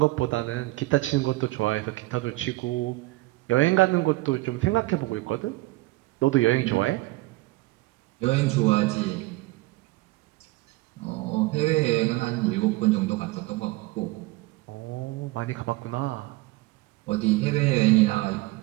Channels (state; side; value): quieter; left; 20.3 dB